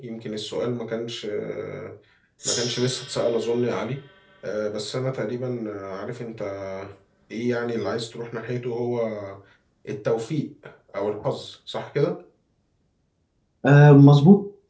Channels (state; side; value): identical; both; correlation 1.00